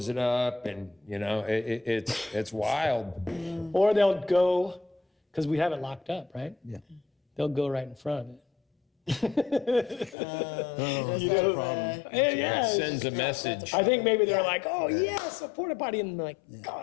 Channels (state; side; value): drops out; right; at 10.2 s